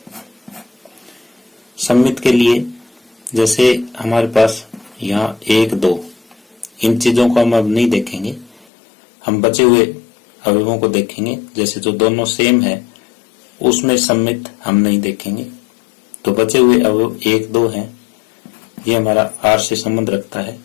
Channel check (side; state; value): right; drops out; at 8.7 s